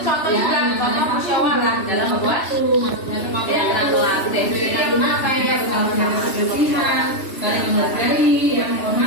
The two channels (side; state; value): right; late; 3.0 ms